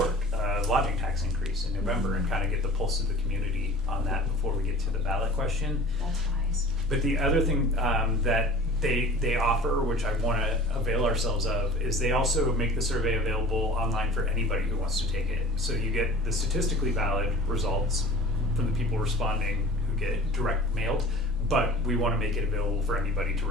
a lodging tax increase in November, and kind of get the pulse of the community on that before we get to the ballot question. That's wise. But the other thing that they offer, which I want to avail ourselves of, is they also make the survey available online for anybody who wants to take it. So you get the statistically valid results from the people responding who get direct mailed, but we want to make it available for anybody to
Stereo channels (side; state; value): both; normal; correlation 0.43